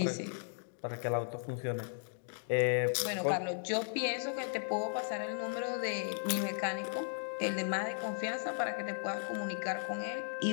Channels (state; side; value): silent; right; digital silence